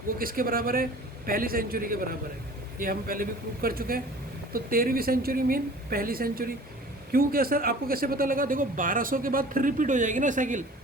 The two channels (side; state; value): both; normal; correlation 0.45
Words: वो किसके बराबर है, पहली सेंचुरी के बराबर है, ये हम पहले भी प्रूव कर चुके हैं। तो 13वीं सेंचुरी मीन पहली सेंचुरी। क्यों, क्या सर आपको कैसे पता लगा, देखो 1200 के बाद फिर रिपीट हो जाएगी ना साइकिल,